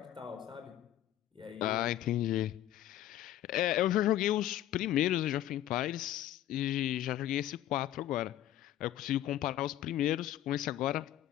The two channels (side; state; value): right; quieter; 12.9 dB